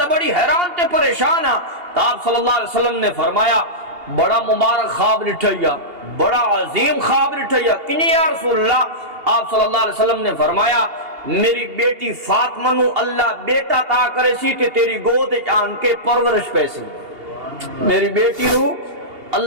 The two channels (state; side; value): late; left; 2.8 ms